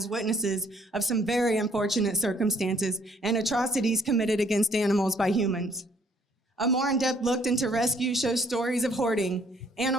witnesses of some very unfortunate circumstances and atrocities committed against animals by humans. A more in-depth look into rescue shows stories of hoarding,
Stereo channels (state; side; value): normal; both; correlation 0.64